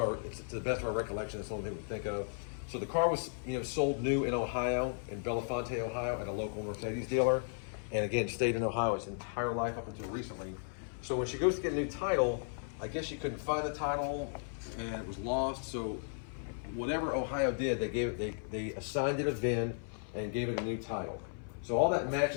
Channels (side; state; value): right; silent; 54 dB below the other